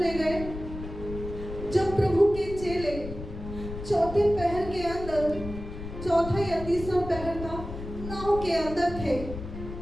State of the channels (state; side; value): noise; left; rumble, 10 dB below the sound